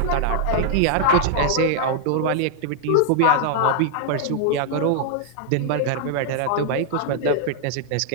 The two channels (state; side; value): different; both; correlation -0.01